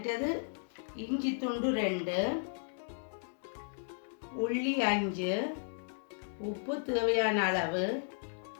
இஞ்சி துண்டு 2, உள்ளி 5, உப்பு தேவையான அளவு,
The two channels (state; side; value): silent; right; digital silence